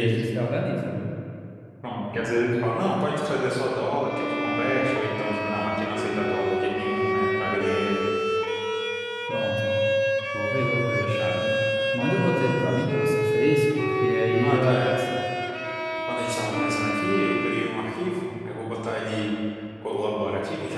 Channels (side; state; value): both; identical; correlation 1.00